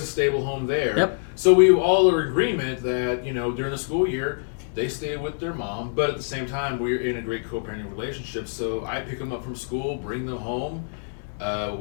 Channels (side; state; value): right; silent; digital silence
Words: a stable home there. Yep. So we all are in agreement that, you know, during the school year, they stay with their mom, but at the same time, we're in a great co-parenting relationship. So I pick them up from school, bring them home.